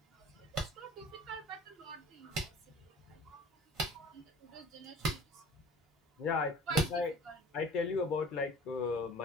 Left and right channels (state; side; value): normal; both; correlation 0.45